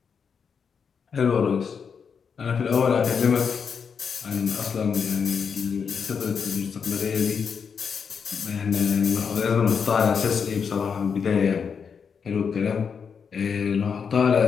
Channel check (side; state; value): right; quieter; 6.4 dB